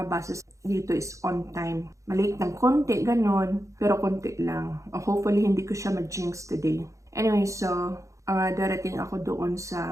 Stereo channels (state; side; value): late; left; 0.15 ms